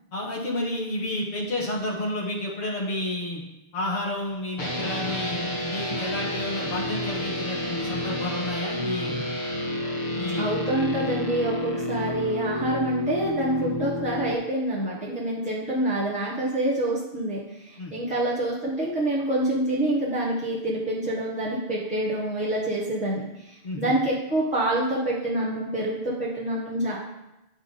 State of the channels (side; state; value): right; late; 6.8 ms